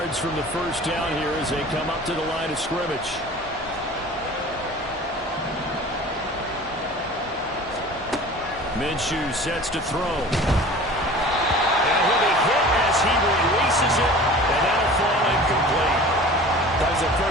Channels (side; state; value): both; normal; correlation 0.41